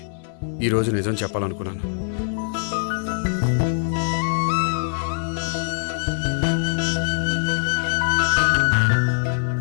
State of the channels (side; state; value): right; silent; digital silence